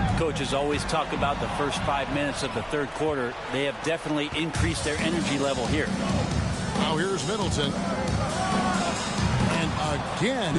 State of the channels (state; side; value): identical; both; correlation 1.00